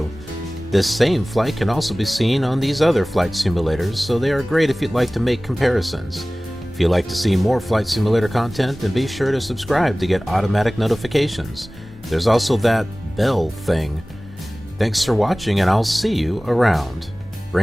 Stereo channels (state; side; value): normal; both; correlation 0.98